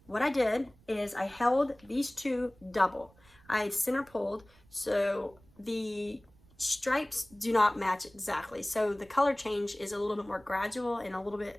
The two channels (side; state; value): right; noise; rumble, 28 dB below the sound